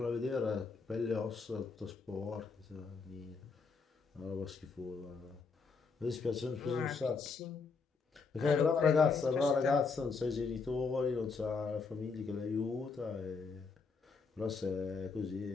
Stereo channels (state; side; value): quieter; right; 4.9 dB